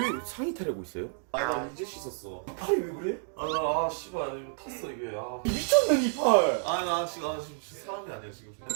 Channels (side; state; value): left; silent; digital silence